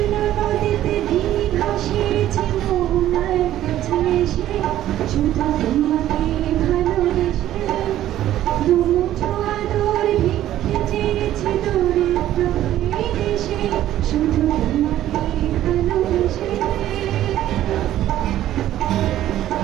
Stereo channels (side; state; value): left; quieter; 12.9 dB